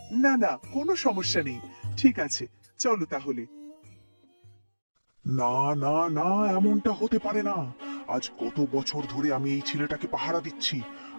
না না, কোনো সমস্যা নেই। ঠিক আছে, চলো তাহলে। না না না, এমনটা হতে পারে না। আজ কত বছর ধরে আমি এই ছেলেটাকে পাহারা দিচ্ছি।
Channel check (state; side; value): inverted; both; correlation -1.00